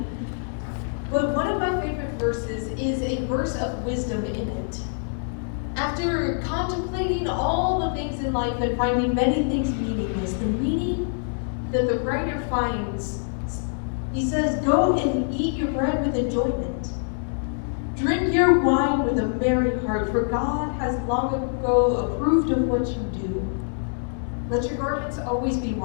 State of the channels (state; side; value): silent; right; digital silence